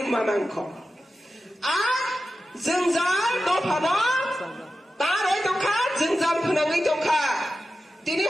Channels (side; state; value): both; normal; correlation 0.92